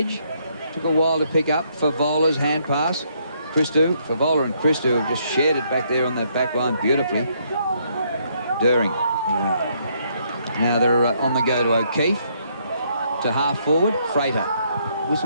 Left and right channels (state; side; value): inverted; both; correlation -0.71